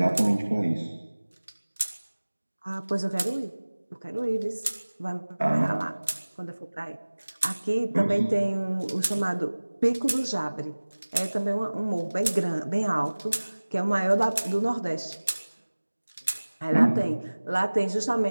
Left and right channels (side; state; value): both; inverted; correlation -1.00